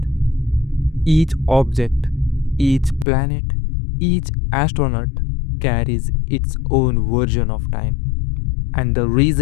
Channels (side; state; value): right; drops out; at 3.1 s